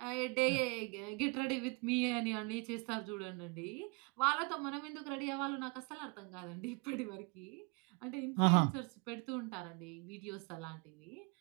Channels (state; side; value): quieter; left; 30.5 dB